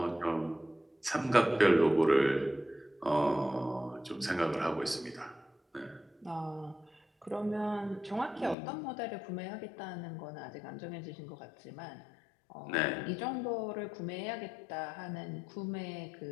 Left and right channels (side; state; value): right; drops out; at 8.6 s